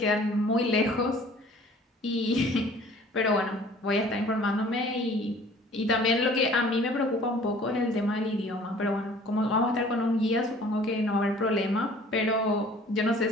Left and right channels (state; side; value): normal; both; correlation 0.51